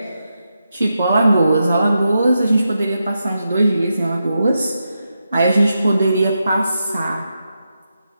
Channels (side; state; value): both; inverted; correlation -0.87